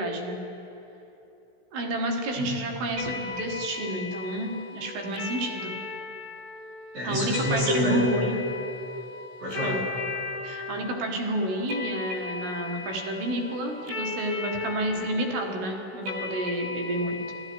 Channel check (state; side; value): late; left; 16 ms